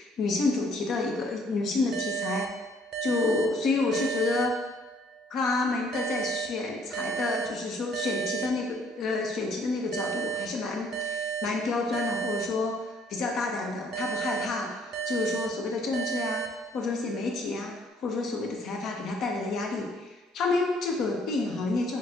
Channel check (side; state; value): both; normal; correlation 0.63